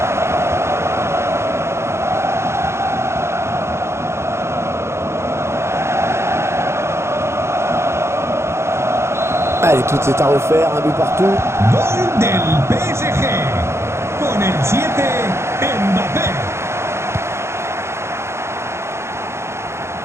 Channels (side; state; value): left; late; 0.13 ms